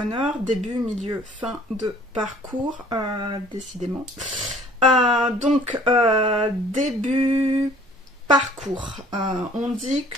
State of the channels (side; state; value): both; normal; correlation 0.54